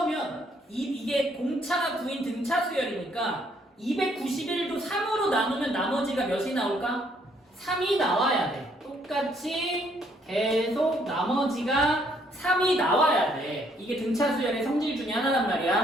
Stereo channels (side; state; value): both; normal; correlation 0.68